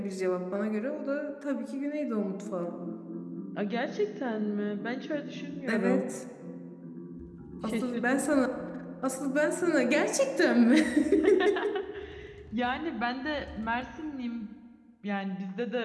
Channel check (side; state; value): both; identical; correlation 1.00